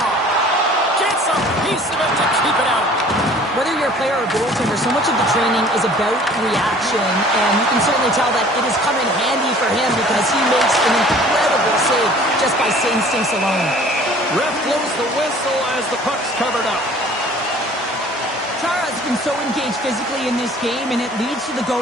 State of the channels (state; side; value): normal; both; correlation 0.50